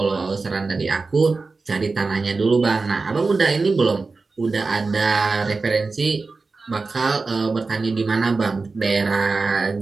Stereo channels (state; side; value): quieter; left; 4.0 dB